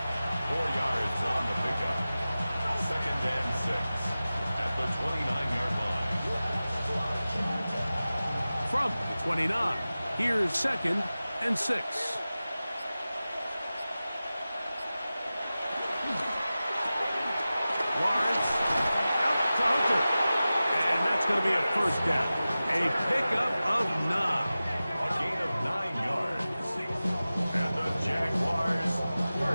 4 yards on the pickup. 2nd and 6 at the 29-yard line. From the 29, here's 2nd and 6. Lawrence out to Hunter. And that's going to be a 1st down. A pickup of 9. A gain of 9 yards. And the Jaguars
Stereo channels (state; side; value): inverted; both; correlation -0.96